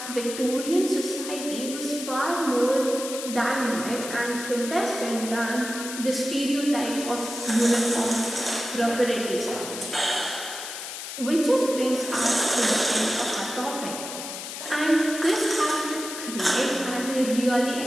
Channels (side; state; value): left; noise; hiss, 8 dB below the sound